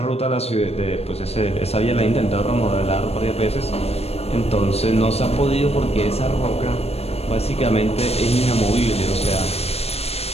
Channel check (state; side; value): late; right; 0.30 ms